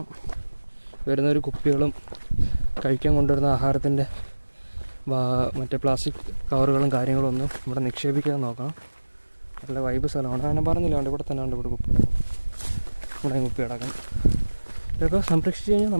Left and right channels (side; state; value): both; inverted; correlation -1.00